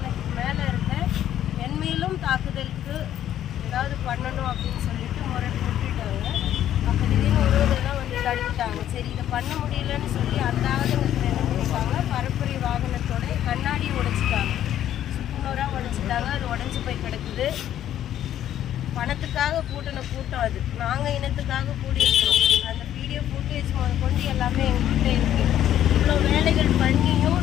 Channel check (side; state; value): right; quieter; 11.4 dB